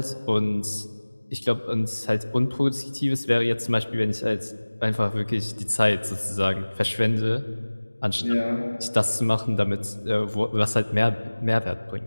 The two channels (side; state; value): both; inverted; correlation -1.00